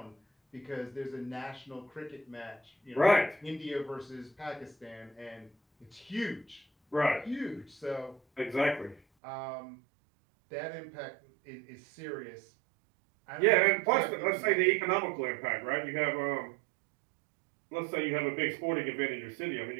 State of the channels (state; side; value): drops out; left; at 9.0 s